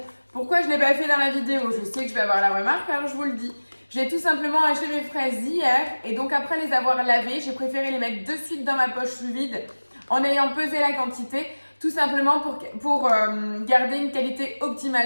pourquoi je ne l'ai pas fait dans la vidéo? Je sais que je vais avoir la remarque, alors je vous le dis. J'ai tout simplement acheté mes fraises hier et donc après les avoir lavées, j'ai préféré les mettre de suite dans ma poche sous vide en ayant pesé la quantité, tout simplement pour garder une qualité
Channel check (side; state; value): both; inverted; correlation -1.00